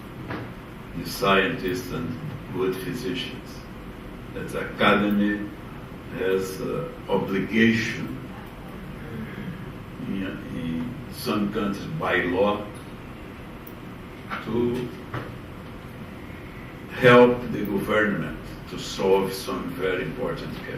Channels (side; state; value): both; identical; correlation 1.00